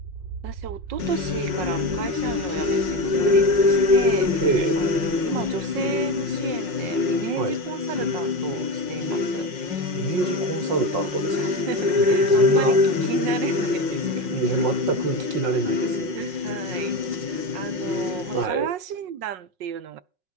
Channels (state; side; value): late; left; 5.5 ms